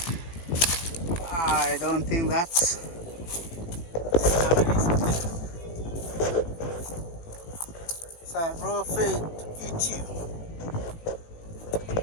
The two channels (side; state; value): right; late; 18 ms